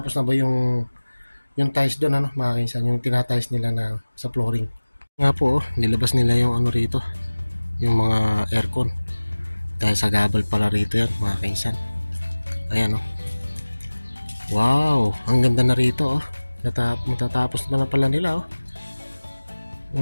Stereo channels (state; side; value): inverted; both; correlation -1.00